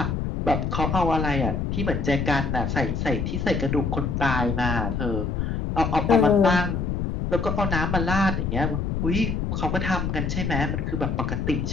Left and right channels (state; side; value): noise; left; rumble, 1 dB below the sound